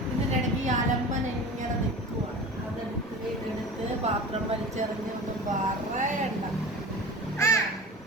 ഇതിൻ്റെ ഇടയ്ക്ക് ഈ അലമ്പൻ ഇങ്ങനെ നിൽക്കുവാണ്. ഇതെടുത്ത് പാത്രം വലിച്ചെറിഞ്ഞ് ഒന്നും പറയണ്ട.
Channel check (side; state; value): both; normal; correlation 0.36